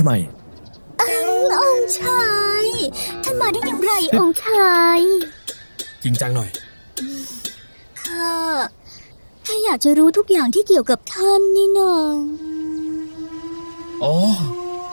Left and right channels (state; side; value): inverted; both; correlation -1.00